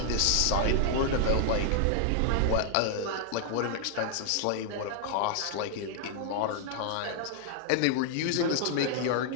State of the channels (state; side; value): different; both; correlation 0.00